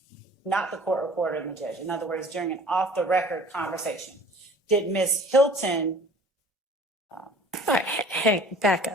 not the court reporter and the judge, in other words, during an off-the-record conversation, did Ms. Hilton... All right, hey, back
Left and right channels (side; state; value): both; normal; correlation 0.48